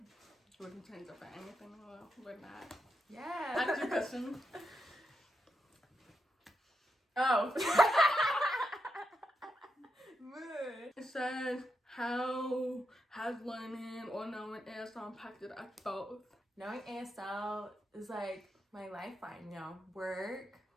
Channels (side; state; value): both; normal; correlation 0.84